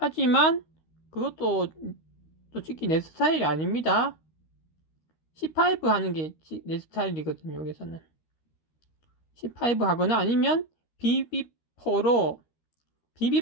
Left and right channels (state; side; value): late; right; 13 ms